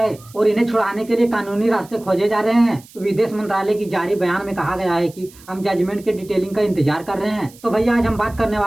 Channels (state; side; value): noise; right; hiss, 23 dB below the sound